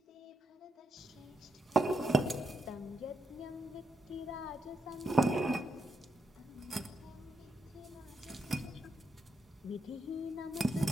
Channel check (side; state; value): both; normal; correlation 0.80